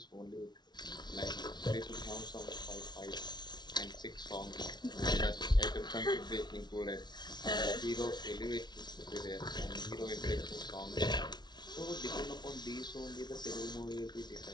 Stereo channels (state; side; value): late; right; 0.20 ms